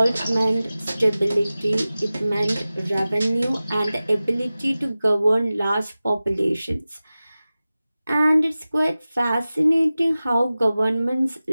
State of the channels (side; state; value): both; inverted; correlation -0.96